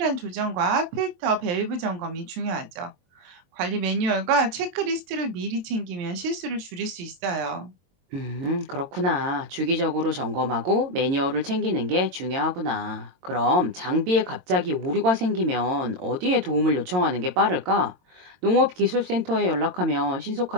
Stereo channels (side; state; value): left; late; 22 ms